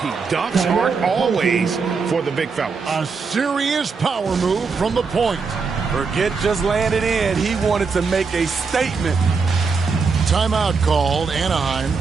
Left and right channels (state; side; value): quieter; left; 5.0 dB